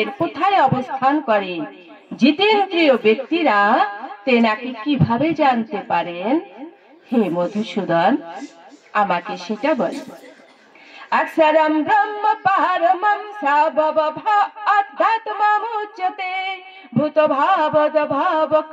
কোথায় অবস্থান করেন? জিতেন্দ্রিয় ব্যক্তিরা তেনাকে কিভাবে জানতে পারেন? হে মধুসূদন, আমাকে সেটা বল। अक्षरं ब्रह्म परमं सावभव अध्यात्ममुच्यते भूतभावद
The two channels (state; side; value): identical; both; correlation 1.00